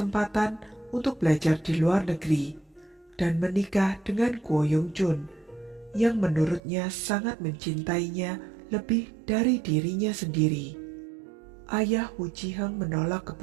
untuk belajar di luar negeri dan menikah dengan Ko Yong-jun, yang menurutnya sangat mencintainya lebih dari dirinya sendiri. Ayah Wu Ji-heng menolak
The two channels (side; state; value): left; drops out; at 6.6 s